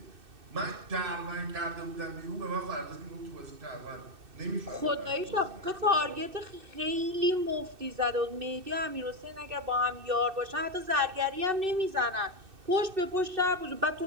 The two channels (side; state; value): left; late; 2.6 ms